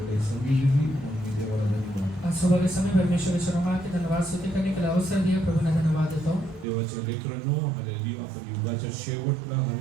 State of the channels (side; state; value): left; drops out; at 6.7 s